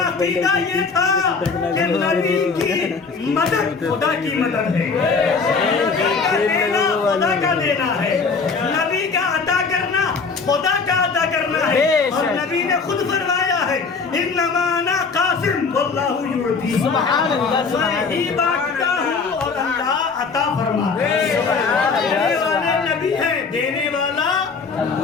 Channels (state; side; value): quieter; right; 4.9 dB